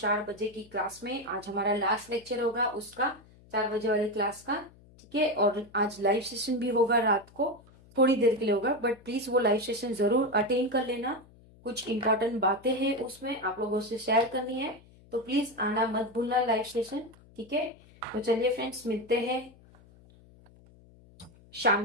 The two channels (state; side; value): noise; left; hum, 25 dB below the sound